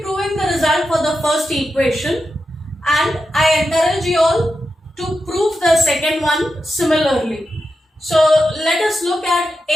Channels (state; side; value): normal; both; correlation 0.89